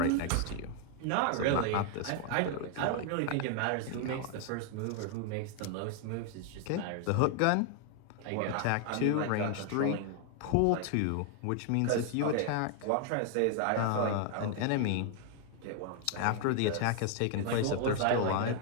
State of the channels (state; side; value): different; both; correlation 0.00